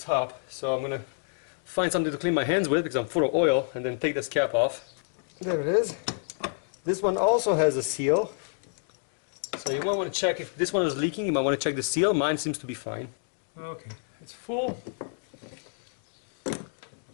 So I'm going to find something to clean my hands with because I'm full of oil, and then take this cap off. There it is. This one also has a seal. So you might want to check if this one is leaking. You might want to check the seal. Mine seems to be fine. Okay, it's full.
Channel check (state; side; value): silent; right; digital silence